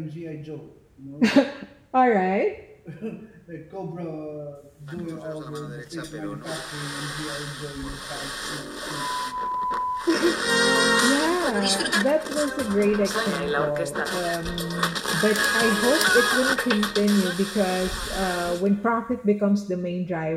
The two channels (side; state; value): both; identical; correlation 1.00